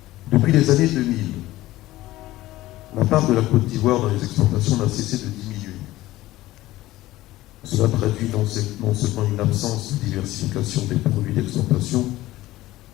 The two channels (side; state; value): right; quieter; 16.7 dB